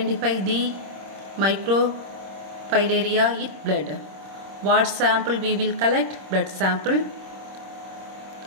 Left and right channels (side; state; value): left; late; 26 ms